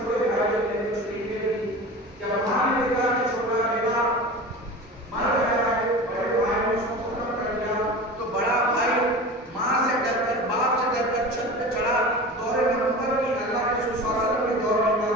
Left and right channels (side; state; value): both; normal; correlation 0.33